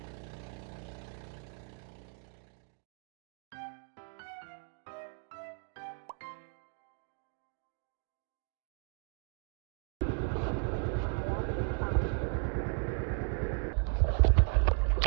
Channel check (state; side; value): quieter; left; 37.9 dB